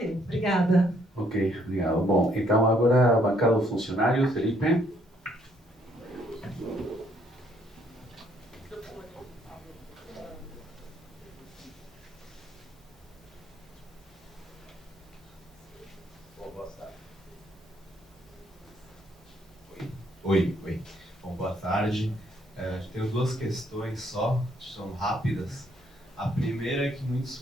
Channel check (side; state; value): both; normal; correlation 0.68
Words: obrigada. Ok, obrigado. Bom, então agora a bancada dos funcionários, Felipe. Oi. Bom, boa tarde. Tenho 2 questões só, são rápidas. A primeira é que muitos